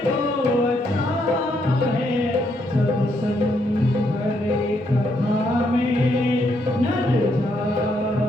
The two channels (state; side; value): normal; both; correlation 0.75